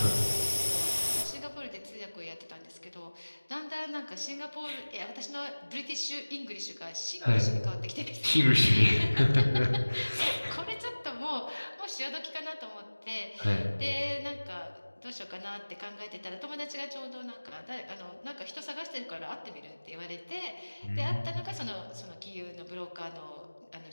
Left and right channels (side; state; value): both; inverted; correlation -1.00